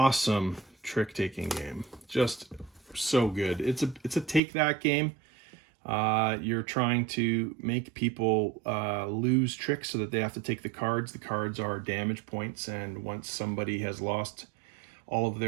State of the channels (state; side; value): drops out; left; at 4.4 s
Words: trick-taking game. Just so good. It's a take that game. You're trying to make people lose tricks so that they have to take the cards. The cards are damage points, and once somebody has lost all of